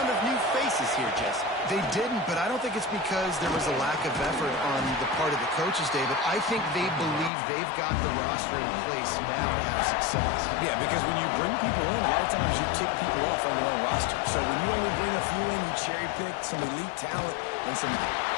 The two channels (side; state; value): right; drops out; at 7.3 s